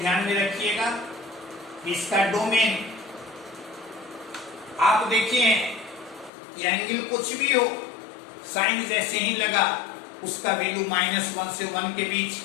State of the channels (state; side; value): drops out; right; at 6.3 s